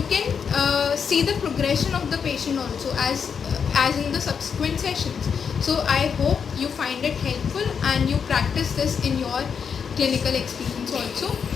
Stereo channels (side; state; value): right; quieter; 6.6 dB